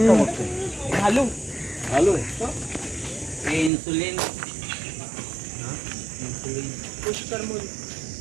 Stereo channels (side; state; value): left; drops out; at 3.7 s